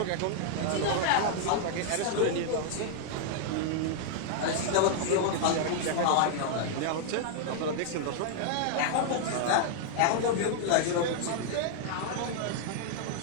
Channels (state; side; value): different; both; correlation -0.01